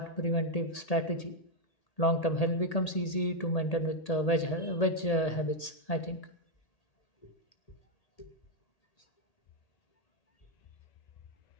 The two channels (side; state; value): right; late; 1.8 ms